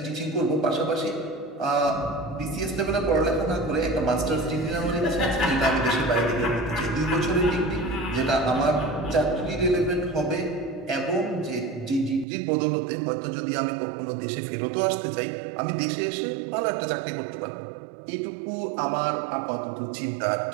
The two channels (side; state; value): left; drops out; at 12.2 s